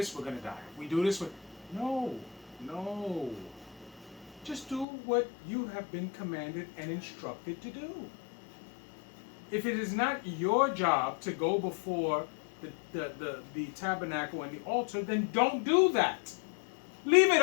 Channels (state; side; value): drops out; right; at 4.9 s